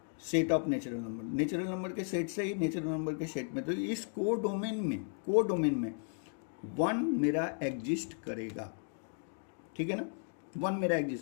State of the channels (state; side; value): silent; right; 54 dB below the other